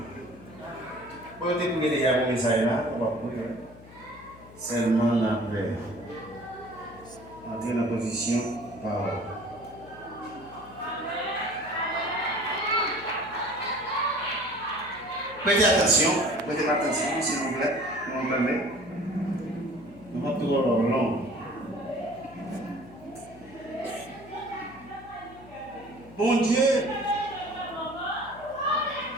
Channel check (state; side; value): noise; left; hum, 19 dB below the sound